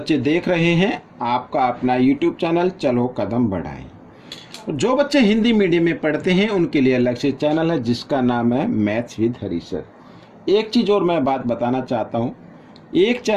देख रहे हैं आपका अपना यूट्यूब चैनल चलो कदम बढ़ाएं। जो बच्चे हिंदी मीडियम में पढ़ते हैं उनके लिए अलग से चैनल है जिसका नाम है मैथ्स विद हरी सर। एक चीज़ और मैं बात बताना चाहता हूँ, एक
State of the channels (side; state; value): both; identical; correlation 1.00